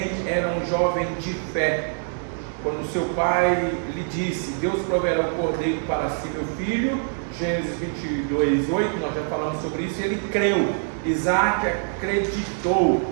era um jovem de fé. Quando seu pai lhe disse: Deus proverá o cordeiro para si, meu filho, Gênesis 22:8, nós já falamos sobre isso, ele creu. Isaac acreditou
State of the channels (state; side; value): silent; left; 61 dB below the other